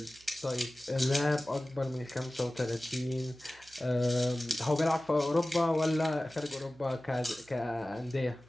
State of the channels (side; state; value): right; noise; hum, 27 dB below the sound